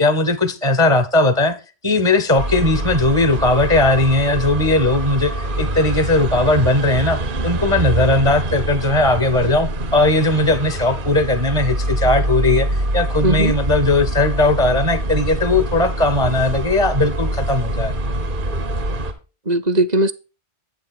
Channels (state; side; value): late; left; 1.5 ms